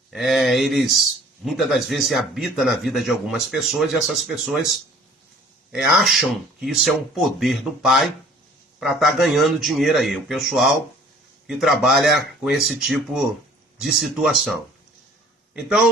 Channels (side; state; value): both; normal; correlation 0.52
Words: eles muitas das vezes habitam na vida de algumas pessoas e essas pessoas acham que isso é um poder do Pai para estar ganhando dinheiro aí. O pessoal que trabalha com esse tipo de situação.